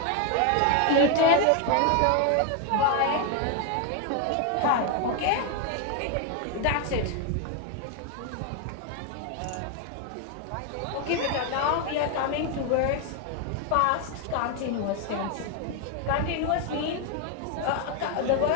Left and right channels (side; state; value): both; different; correlation 0.01